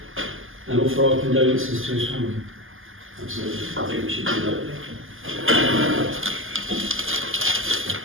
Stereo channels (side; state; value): left; late; 0.59 ms